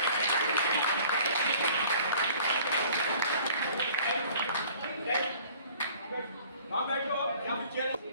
वहाँ बैठो, यहाँ पे चेयर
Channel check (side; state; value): both; inverted; correlation -0.51